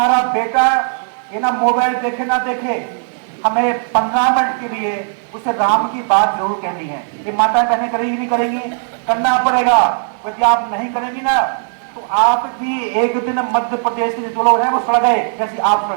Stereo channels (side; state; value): left; silent; 63 dB below the other